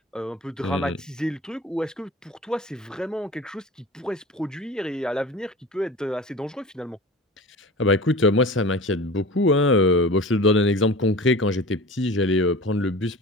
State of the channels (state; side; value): normal; both; correlation 0.37